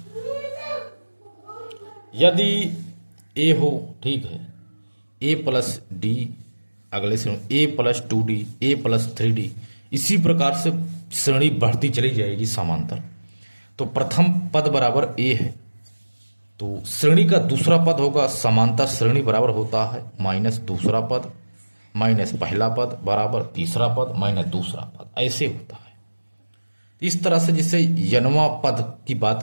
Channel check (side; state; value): both; inverted; correlation -1.00